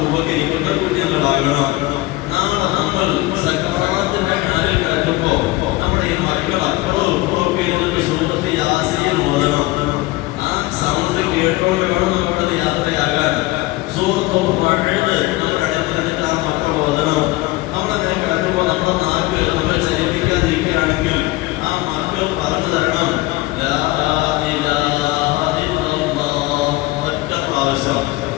ഉപകരിക്കുന്ന കുഞ്ഞുങ്ങളാകണം. നാളെ നമ്മൾ സക്കറാത്തിന്റെ ഹാലിൽ കിടക്കുമ്പോ നമ്മുടെ ഈ മക്കൾ അപ്പുറവും ഇപ്പുറമൊക്കെ ഇരുന്നിട്ട് സൂറത്ത് യാസീൻ ഓതണം. ആ സൗണ്ട് കേട്ടോണ്ട് വേണം നമ്മുടെ യാത്രയാകാൻ. സൂറത്ത് മഴയത് നമ്മുടെ അടുത്ത് ആ മക്കൾ ഓതണം. നമ്മളങ്ങനെ കിടക്കുമ്പോൾ നമ്മുടെ നാക്ക് നമ്മൾ ചലിപ്പിക്കാതിരിക്കുകയാണെങ്കിൽ ആ മക്കൾ പറഞ്ഞു തരണം ഒറ്റ പ്രാവശ്യം.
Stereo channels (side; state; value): right; quieter; 20.0 dB